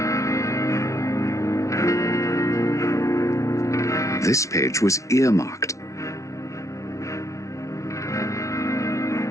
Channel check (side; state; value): right; late; 0.14 ms